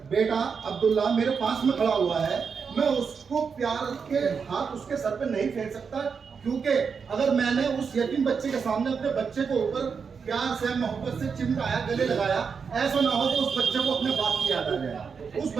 बेटा अब्दुल्ला मेरे पास में खड़ा हुआ है, मैं उसको प्यार के हाथ उसके सर पे नहीं फेर सकता, क्योंकि अगर मैंने उस यतीम बच्चे के सामने अपने बच्चे को ऊपर प्यार से मोहब्बत से चिमटाया, गले लगाया, ऐसा ना हो कि उस बच्चे को अपने बाप की याद आ जाए, उस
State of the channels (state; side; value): quieter; left; 5.9 dB